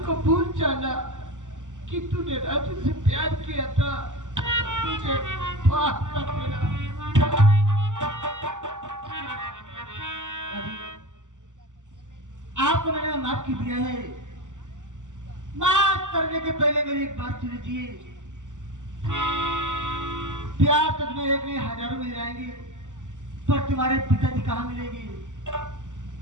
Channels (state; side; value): late; left; 0.86 ms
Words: को भूल जाना कि तूने राजू से प्यार किया था, मुझे माफ कर देना। आपको मैंने माफ कर दिया है, माफ करने के पहले मेरी एक बात सुन लीजिए। प्यार तो तुम्हें एक नहीं हजारों मिल जाएंगे, पर तुम्हारे पिताजी कहाँ मिलेंगे?